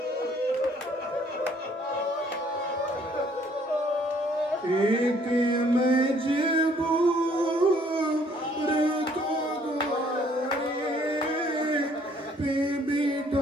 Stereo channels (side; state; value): both; normal; correlation 0.62